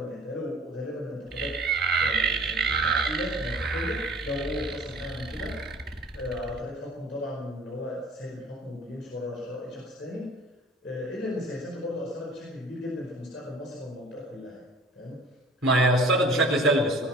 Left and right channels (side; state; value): both; normal; correlation 0.48